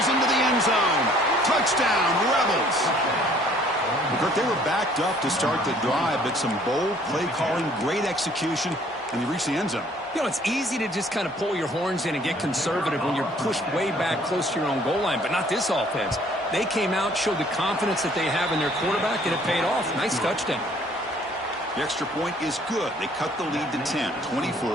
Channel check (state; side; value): normal; both; correlation 0.58